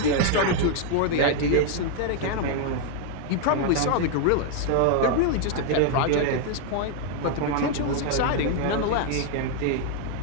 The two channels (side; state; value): both; different; correlation 0.00